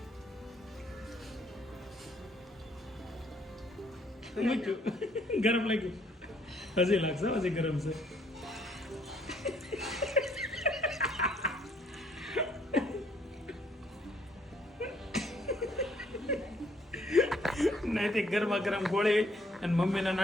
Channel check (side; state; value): both; normal; correlation 0.66